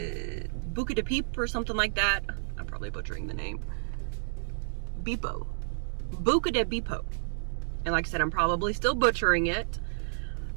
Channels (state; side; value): silent; left; digital silence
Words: Peep or something like that. I'm probably butchering the name. Bipo. Buca de Bipo. And like I said, I'm probably still butchering it.